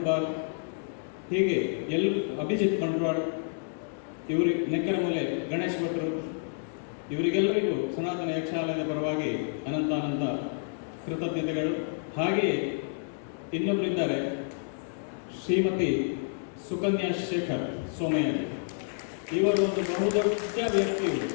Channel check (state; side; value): silent; right; digital silence